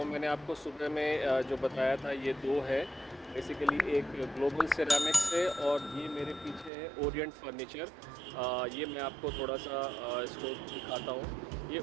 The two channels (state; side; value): drops out; left; at 6.7 s